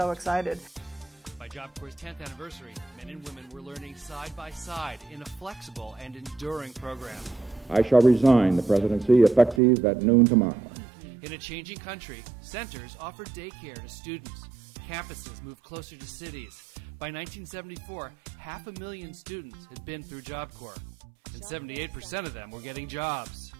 excited. By Job Corps' 10th anniversary, men and women were learning side by side in a flexible and enduring program. I shall resign the presidency effective at noon tomorrow. In a changing country, centers offered daycare to students. Campuses moved closer to cities. By 1974, 500,000 students had been through Job Corps, and 78% of them were getting jobs.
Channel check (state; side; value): drops out; left; at 9.6 s